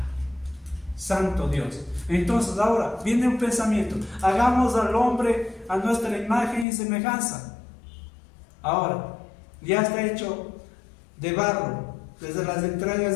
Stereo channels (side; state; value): right; drops out; at 6.7 s